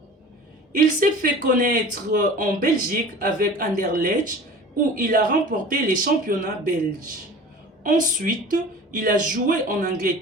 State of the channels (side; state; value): both; normal; correlation 0.40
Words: Il s'est fait connaître en Belgique avec Anderlecht où il a remporté les championnats belges. Ensuite, il a joué en